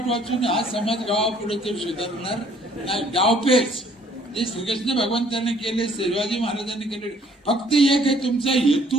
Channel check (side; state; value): both; normal; correlation 0.60